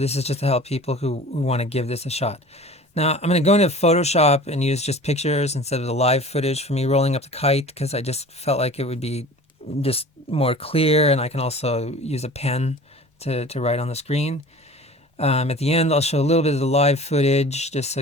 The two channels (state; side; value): normal; both; correlation 0.41